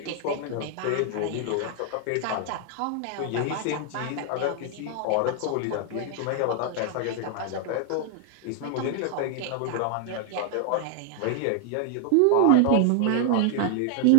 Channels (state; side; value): different; both; correlation 0.00